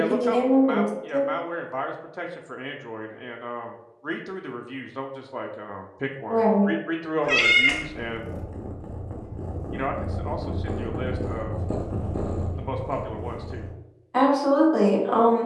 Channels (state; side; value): identical; both; correlation 1.00